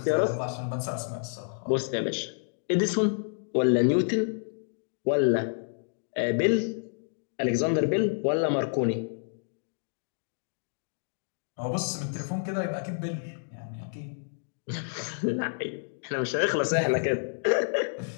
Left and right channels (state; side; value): silent; right; digital silence